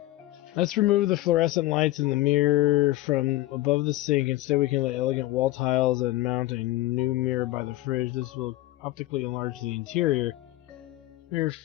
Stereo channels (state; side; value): quieter; right; 16.8 dB